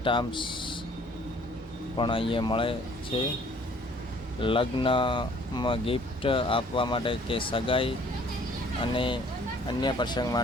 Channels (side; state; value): both; normal; correlation 0.56